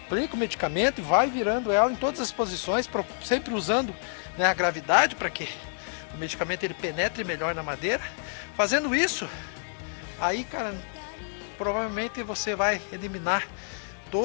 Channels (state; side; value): silent; right; digital silence